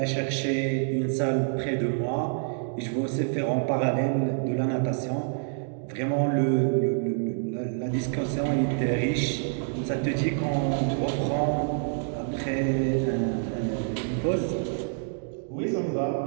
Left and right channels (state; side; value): silent; left; digital silence